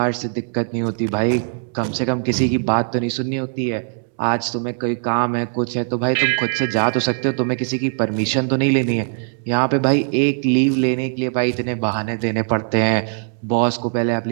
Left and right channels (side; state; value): left; silent; digital silence